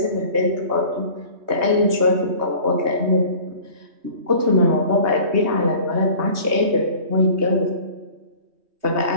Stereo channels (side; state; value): left; late; 3.2 ms